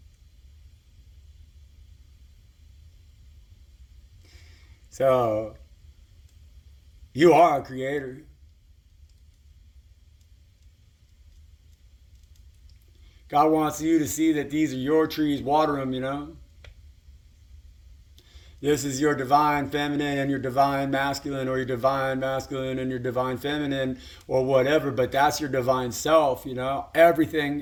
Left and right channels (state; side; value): identical; both; correlation 1.00